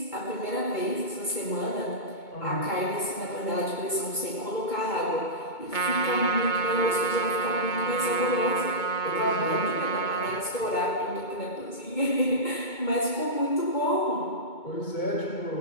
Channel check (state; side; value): late; right; 2.2 ms